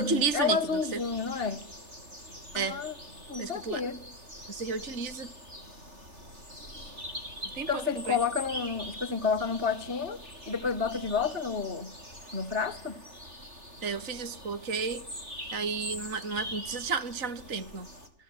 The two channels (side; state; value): left; late; 3.4 ms